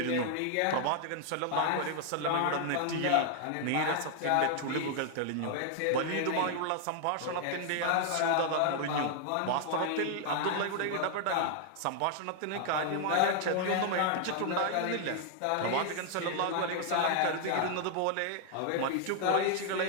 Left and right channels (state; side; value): different; both; correlation 0.00